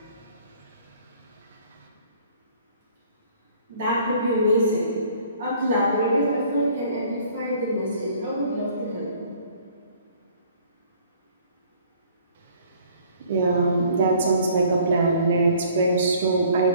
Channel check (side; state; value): both; inverted; correlation -0.57